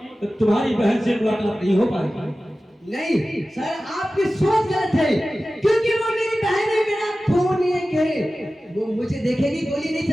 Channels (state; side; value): normal; both; correlation 0.95